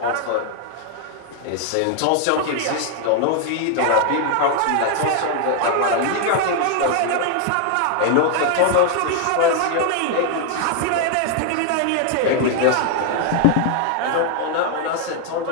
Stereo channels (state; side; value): different; both; correlation 0.00